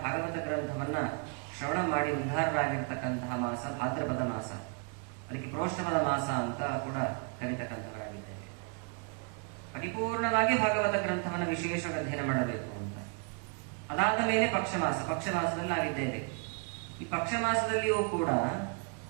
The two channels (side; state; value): left; quieter; 37.7 dB